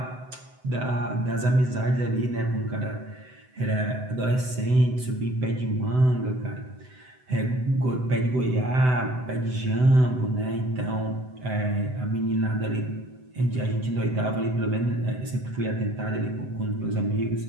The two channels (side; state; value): left; late; 7.9 ms